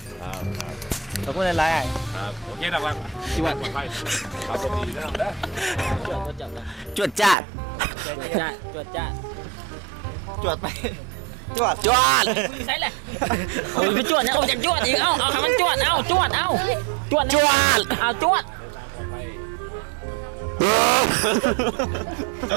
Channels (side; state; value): left; drops out; at 7.4 s